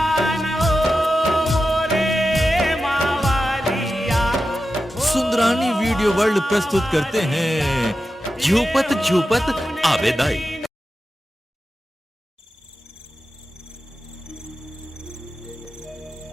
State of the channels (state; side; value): normal; both; correlation 0.91